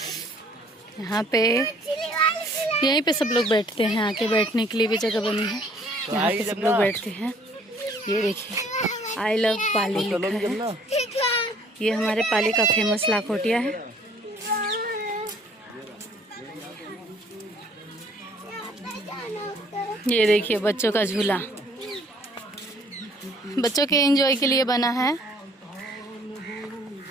यहाँ पे, यहीं पे सब लोग बैठते हैं, आके बैठने के लिए भी जगह बनी है, यहाँ पे सब लोग बैठते हैं। ये देखिए आई लव पाली लिखा है। ये हमारे पाली का फेमस लाखोटिया है। ये देखिए बच्चों का झूला, बच्चों के एंजॉय के लिए बना है।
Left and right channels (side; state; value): both; normal; correlation 0.58